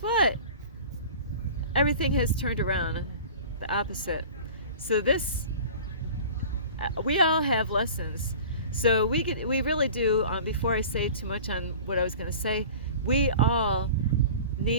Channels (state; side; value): inverted; both; correlation -0.40